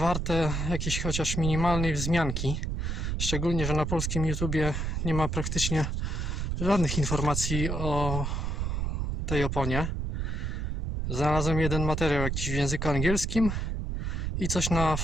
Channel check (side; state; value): right; noise; rumble, 1 dB below the sound